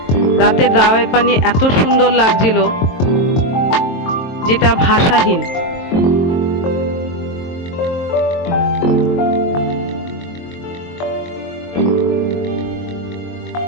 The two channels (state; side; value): late; right; 22 ms